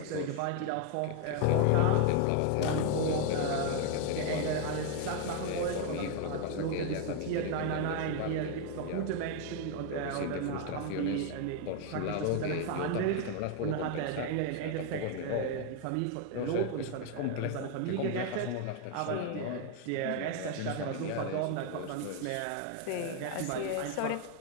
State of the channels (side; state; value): both; different; correlation 0.01